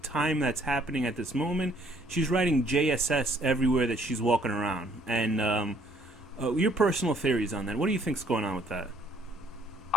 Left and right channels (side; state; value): both; normal; correlation 0.63